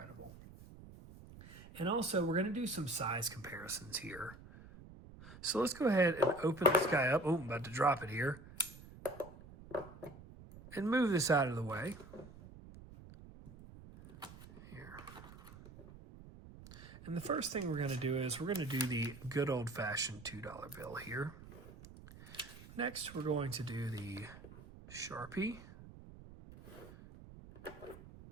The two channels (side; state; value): right; noise; rumble, 17 dB below the sound